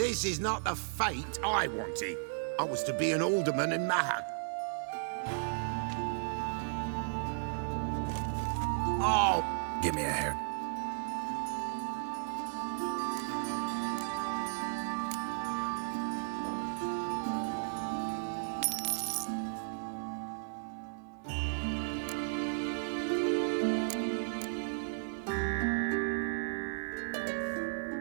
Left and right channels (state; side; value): silent; left; 55 dB below the other